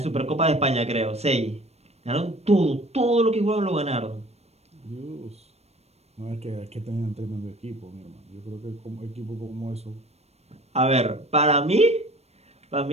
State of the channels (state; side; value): late; left; 0.31 ms